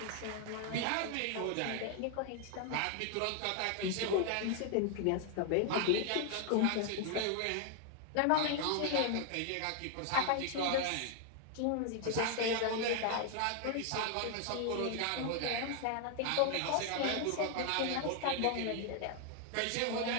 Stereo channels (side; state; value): both; different; correlation 0.00